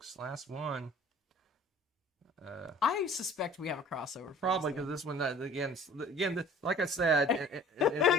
Last one. I suspect we have a crossover. Probably because this one, again, like I said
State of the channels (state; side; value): normal; both; correlation 0.48